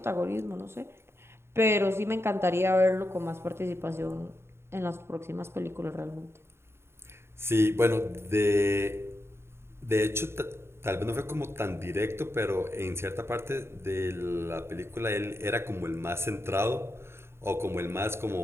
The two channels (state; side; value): late; left; 0.12 ms